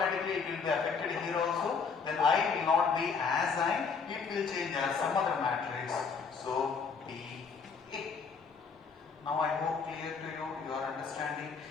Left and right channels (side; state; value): right; quieter; 5.5 dB